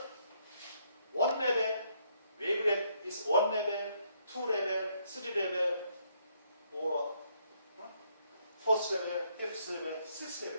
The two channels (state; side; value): inverted; both; correlation -0.71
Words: one level, wavelet is one level, two level, three level, or fourth level, fifth level, sixth